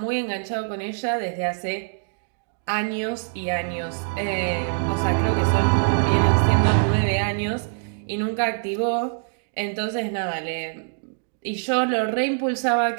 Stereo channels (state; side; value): silent; left; digital silence